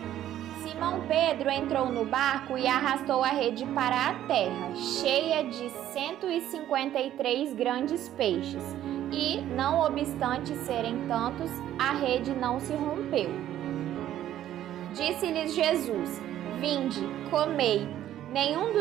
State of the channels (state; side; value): quieter; left; 12.1 dB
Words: Simão Pedro entrou no barco e arrastou a rede para a terra, cheia de 153 grandes peixes, e, não obstante serem tantos, a rede não se rompeu. Disse-lhes Jesus: Vinde, comei. Nenhum